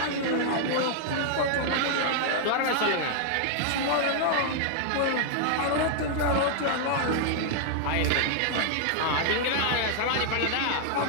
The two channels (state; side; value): different; both; correlation 0.00